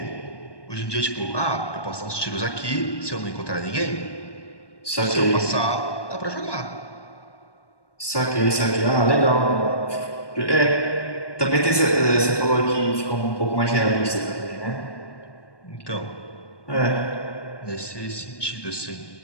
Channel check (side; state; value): right; late; 1.2 ms